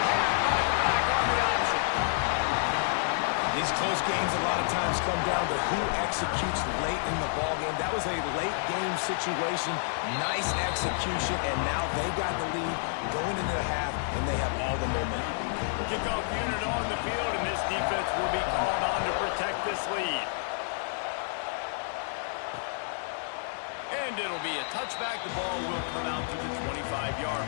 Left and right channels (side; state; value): right; silent; digital silence